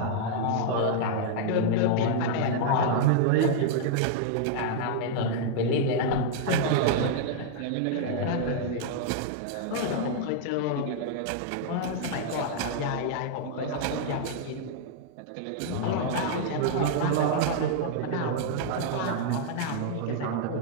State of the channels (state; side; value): different; both; correlation -0.01